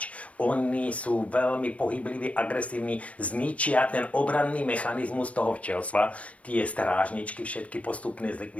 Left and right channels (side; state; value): right; late; 0.064 ms